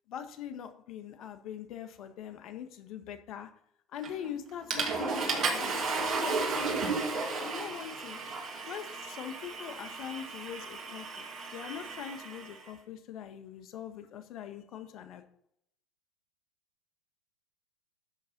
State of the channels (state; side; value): normal; both; correlation 0.49